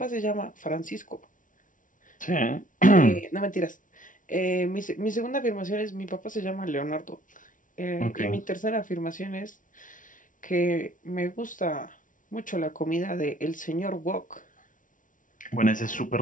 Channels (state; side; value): late; right; 0.38 ms